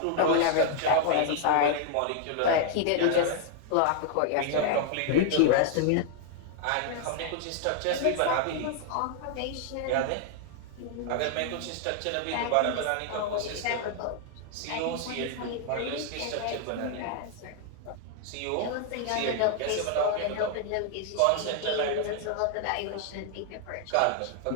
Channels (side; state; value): both; different; correlation 0.00